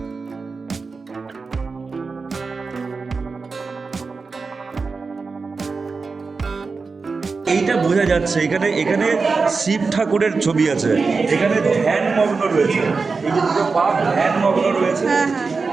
এইটা বোঝা যাচ্ছে, এখানে এখানে শিব ঠাকুরের ছবি আছে, এখানে ধ্যান মগ্ন রয়েছে, এই যে দুটো পা ধ্যান মগ্ন রয়েছে,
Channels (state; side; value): quieter; left; 4.5 dB